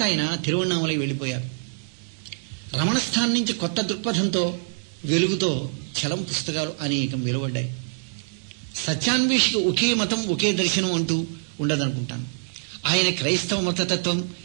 ఆయన తిరువణ్ణామలై వెళ్ళిపోయారు. రమణస్థానం నుంచి కొత్త దృక్పథంతో, వెలుగుతో చలం పుస్తకాలు అనేకం వెలువడ్డాయి. సత్యాన్వేషికి ఒకే మతం, ఒకే దర్శనం అంటూ ఉండదనుకుంటాను. ఆయన క్రైస్తవ మతతత్వం,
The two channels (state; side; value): silent; left; digital silence